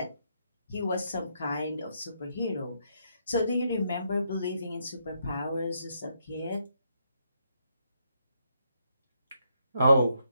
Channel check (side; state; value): both; inverted; correlation -0.77